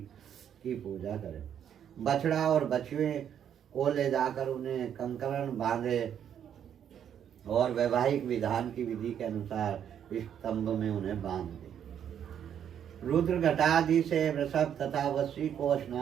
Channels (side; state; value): left; quieter; 9.1 dB